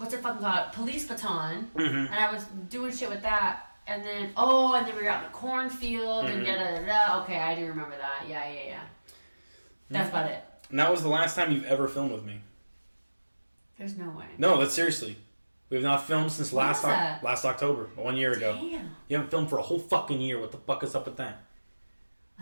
it fucking called? Police baton. Mm-hmm. And I was doing shit with that. And then we were out in the cornfield and da-da-da-da. Okay, I do remember that. Yeah. That's about it. And that was the last time you've ever filmed with me. There's no way. No, that's seriously. We have not filmed since last October, 1 year ago. Damn. You haven't filmed for a whole fucking year. What the fuck is up with that?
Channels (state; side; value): inverted; both; correlation -1.00